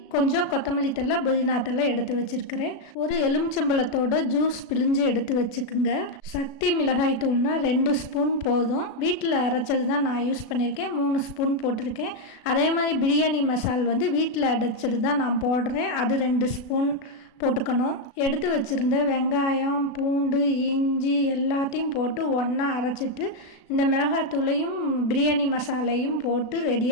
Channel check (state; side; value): late; right; 36 ms